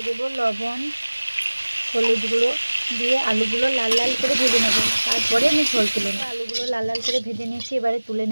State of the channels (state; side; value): inverted; both; correlation -1.00